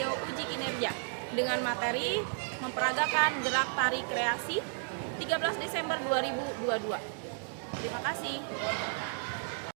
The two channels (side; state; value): left; silent; 56 dB below the other